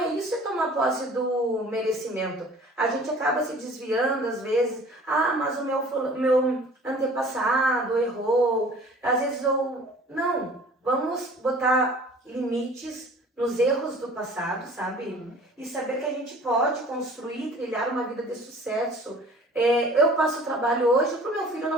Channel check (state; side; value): normal; both; correlation 0.48